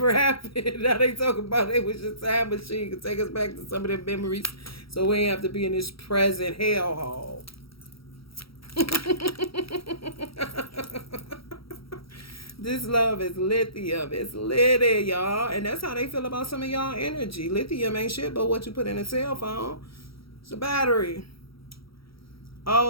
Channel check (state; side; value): late; right; 0.75 ms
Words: happened. Now they talk about it was a time machine to take us back to some of their memories, so we ain't have to be in this present hellhole. This love is lithium. It's litty, y'all. And that's how they feel about some of y'all energy. Lithium ain't shit but what you put in a cell phone. It's a battery.